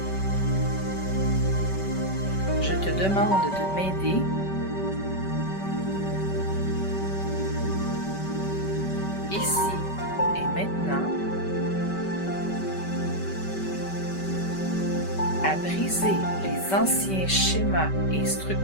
je te demande de m'aider ici et maintenant à briser les anciens schémas et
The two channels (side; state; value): right; late; 5.2 ms